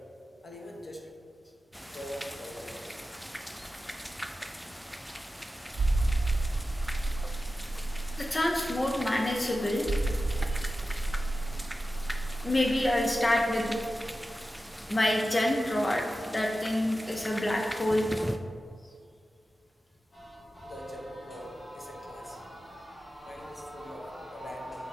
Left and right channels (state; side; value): normal; both; correlation 0.93